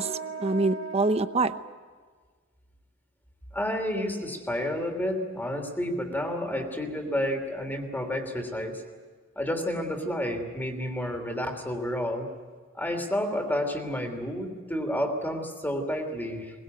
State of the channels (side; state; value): both; normal; correlation 0.59